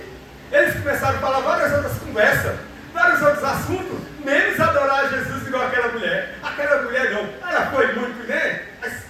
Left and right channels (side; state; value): both; identical; correlation 1.00